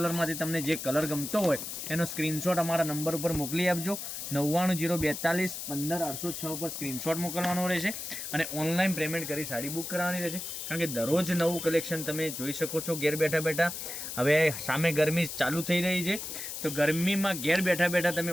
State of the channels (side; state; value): left; noise; hiss, 7 dB below the sound